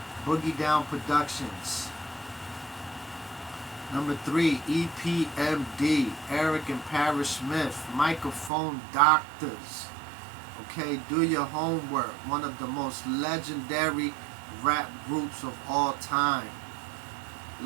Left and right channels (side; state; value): left; drops out; at 8.5 s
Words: Boogie Down Productions. Number 3, EPMD. Eric and Parrish Smith. Microphone Doctors. Okay, do your homework. One of the most legendary rap groups of all time.